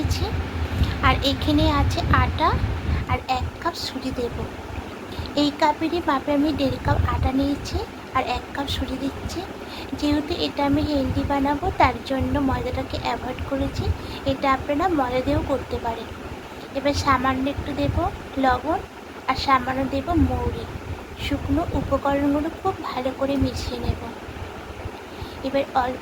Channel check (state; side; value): identical; both; correlation 1.00